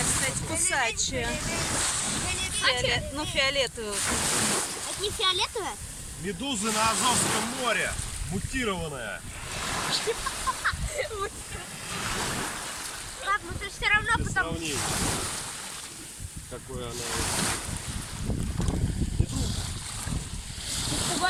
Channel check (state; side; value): identical; both; correlation 1.00